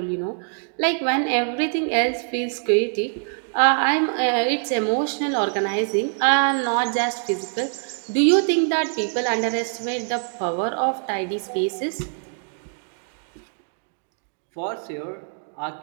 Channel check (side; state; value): left; silent; 63 dB below the other